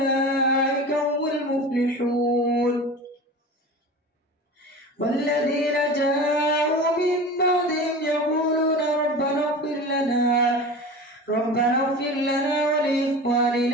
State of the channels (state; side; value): normal; both; correlation 0.33